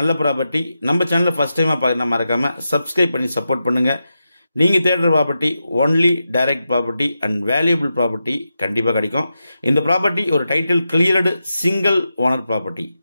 ப்ராப்பர்ட்டி. நம்ம சேனலில் ஃபஸ்ட் டைமாக பார்க்க மறக்காமல் சப்ஸ்கிரைப் பண்ணி சப்போர்ட் பண்ணுங்கள். நீங்கள் தேடுற property only direct property and valuable property கண்டிப்பாக கிடைக்கும். இந்த ப்ராப்பர்ட்டி ஒரு title cleared single owner property.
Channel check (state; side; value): inverted; both; correlation -0.89